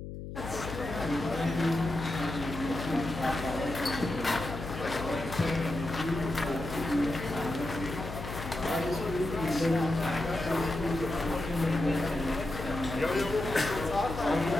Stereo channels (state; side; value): noise; left; hum, 9 dB below the sound